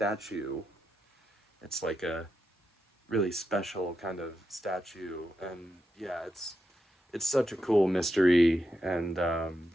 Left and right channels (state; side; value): normal; both; correlation 0.86